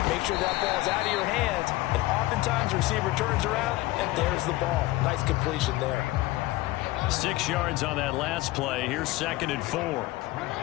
Make sure that ball's out of your hands, and oftentimes the receiver turns around, and there's the ball. Nice completion there. 6 yards on that last play. Here's 2nd and 4.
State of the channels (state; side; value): quieter; right; 18.5 dB